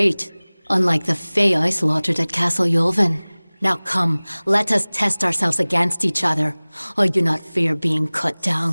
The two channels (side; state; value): both; inverted; correlation -1.00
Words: unlike the Fae I slaughtered at Castle Yulvin. Now come, let us test ourselves against each other. I do not fear being cut